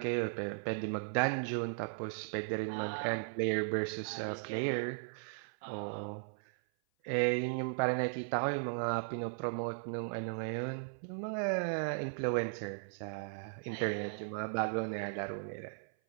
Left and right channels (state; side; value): silent; left; 53 dB below the other